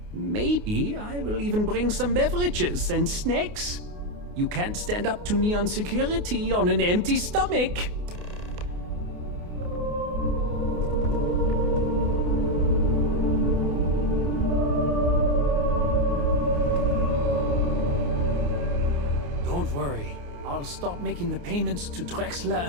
Maybe I will even bring some beverages and snacks. You can't stand up to Neon security on an empty stomach. Don't worry. I'll stop making the payments to Drexler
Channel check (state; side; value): late; left; 28 ms